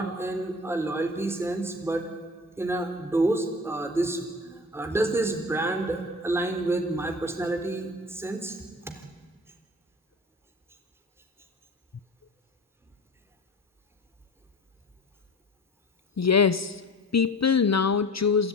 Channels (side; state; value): both; normal; correlation 0.39